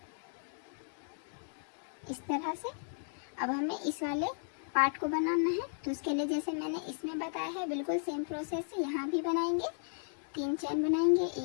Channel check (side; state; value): right; silent; digital silence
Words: इस तरह से। अब हमें इस वाले पार्ट को बनाना है। तो उसके लिए जैसे मैंने इसमें बताया है बिल्कुल सेम प्रोसेस से यहाँ भी बनाएंगे। 3 चेन बनाएंगे,